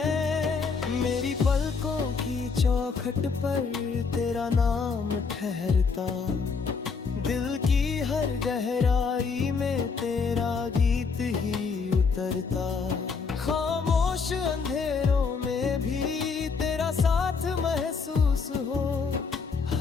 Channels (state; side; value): quieter; right; 5.1 dB